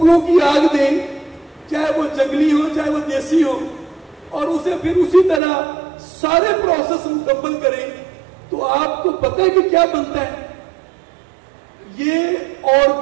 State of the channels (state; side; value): drops out; left; at 5.4 s